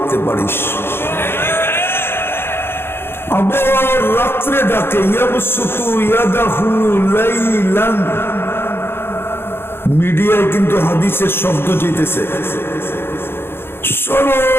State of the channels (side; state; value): right; late; 0.11 ms